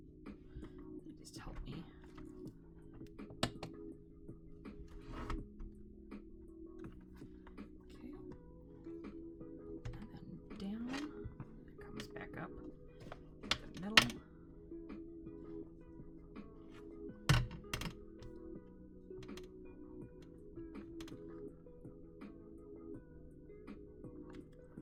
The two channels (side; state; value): both; identical; correlation 1.00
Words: They just help me. Back up the middle.